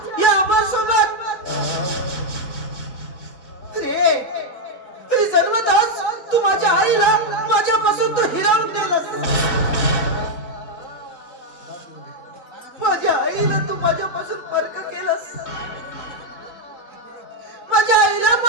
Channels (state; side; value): late; right; 3.8 ms